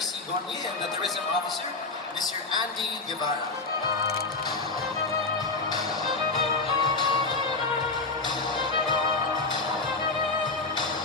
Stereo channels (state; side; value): quieter; right; 3.6 dB